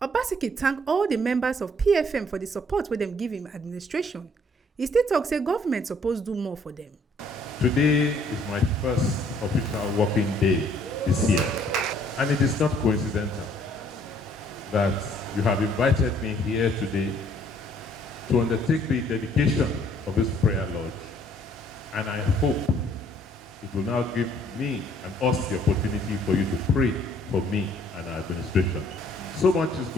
OBASEKI thank all the members of PFM for the support wey dem give him administration. He still talk say government suppose do more for them. Today is my first official working day this year, and it is not coincidental that you have invited me here today to undertake the dedication of this prayer lodge, and I hope it will now give me and us the opportunity for you to pray for me and our administration. So much is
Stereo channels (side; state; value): both; normal; correlation 0.62